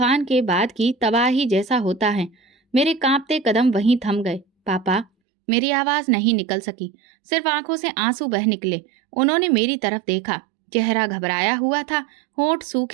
के बाद की तबाही जैसा होता है। मेरे कांपते कदम वहीं थम गए। पापा, मेरी आवाज नहीं निकल सकी, सिर्फ आंखों से आंसू बह निकले। उन्होंने मेरी तरफ देखा। चेहरा घबराया हुआ था, होंठ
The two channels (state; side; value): drops out; left; at 5.1 s